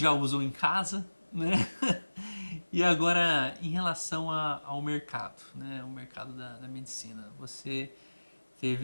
usam em casa, né? E agora, em relação ao mercado, né? O mercado da medicina, você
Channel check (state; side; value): inverted; both; correlation -1.00